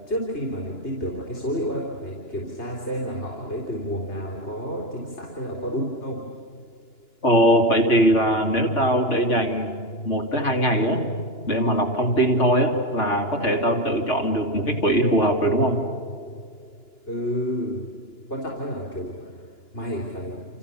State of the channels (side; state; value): right; late; 2.9 ms